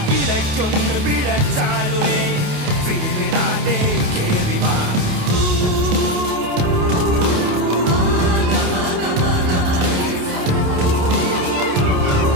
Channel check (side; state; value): left; late; 28 ms